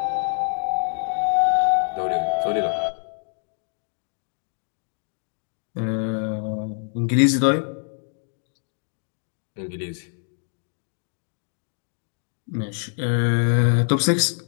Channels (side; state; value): right; silent; 62 dB below the other